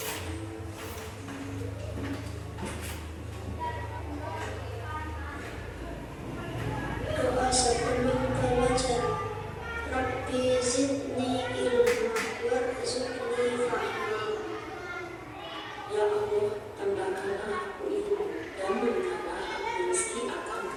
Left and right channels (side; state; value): both; identical; correlation 1.00